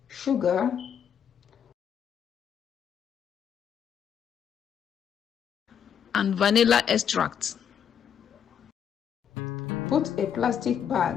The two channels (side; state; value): right; quieter; 8.3 dB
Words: sugar, and vanilla extract. Put a plastic